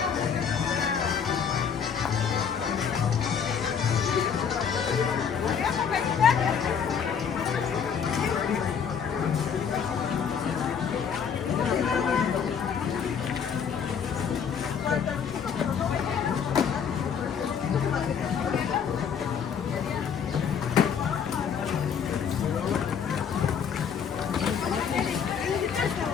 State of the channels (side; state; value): right; quieter; 7.2 dB